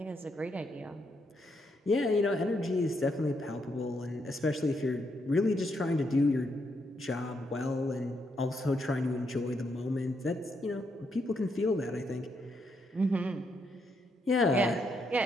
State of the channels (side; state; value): both; normal; correlation 0.78